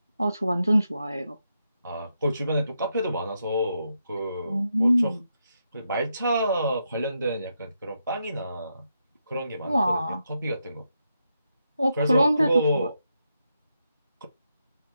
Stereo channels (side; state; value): both; inverted; correlation -0.83